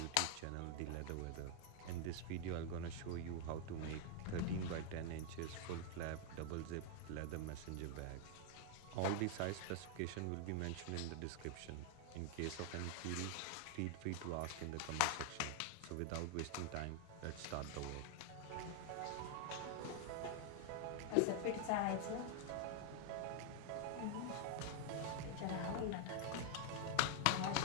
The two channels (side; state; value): both; different; correlation 0.00